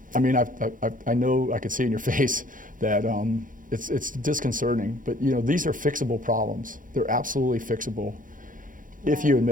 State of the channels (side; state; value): left; late; 0.39 ms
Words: I know I could see in your face that it's disconcerting, but these are fixable problems. They're absolutely fixable if you